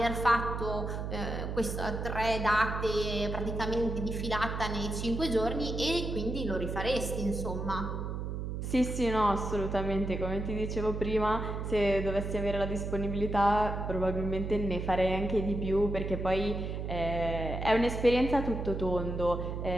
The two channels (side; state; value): right; noise; hum, 4 dB below the sound